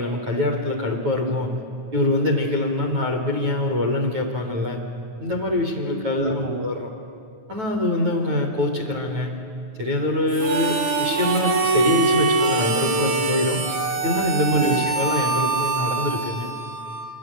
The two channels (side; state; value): left; late; 9.7 ms